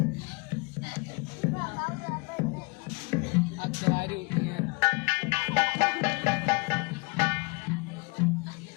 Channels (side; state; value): right; quieter; 28.6 dB